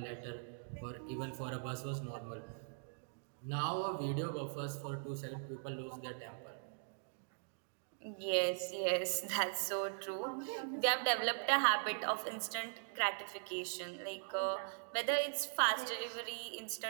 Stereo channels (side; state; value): left; silent; digital silence